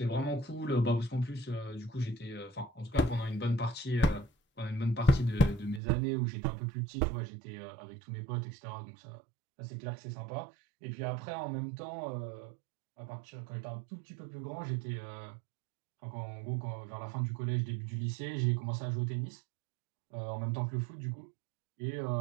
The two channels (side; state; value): left; drops out; at 5.8 s